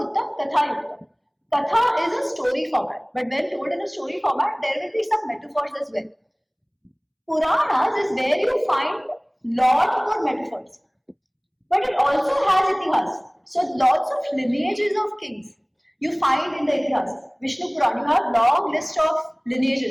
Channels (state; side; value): identical; both; correlation 1.00